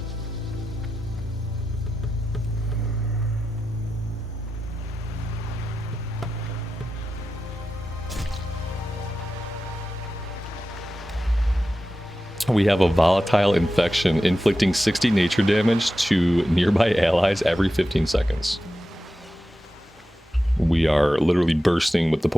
We have a volatile infection inflicting 60 nature damage to nearby allies every 15 seconds. We are literally bursting with the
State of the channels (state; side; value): normal; both; correlation 0.92